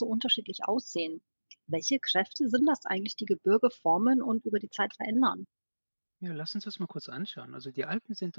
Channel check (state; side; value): inverted; both; correlation -1.00